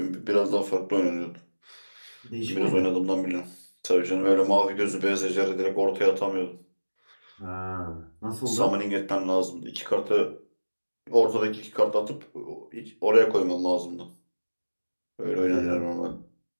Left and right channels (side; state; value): both; inverted; correlation -1.00